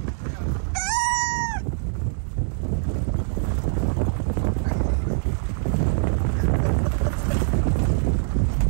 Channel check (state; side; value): silent; left; digital silence